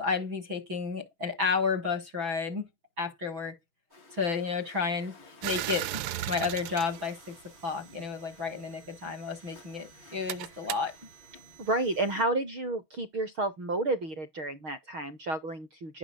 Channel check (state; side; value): late; left; 6.9 ms